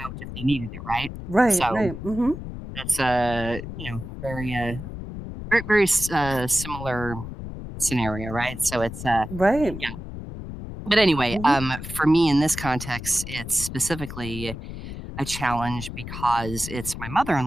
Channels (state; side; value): noise; left; rumble, 9 dB below the sound